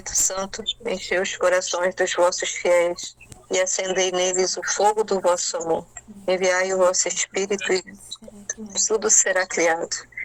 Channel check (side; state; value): both; identical; correlation 1.00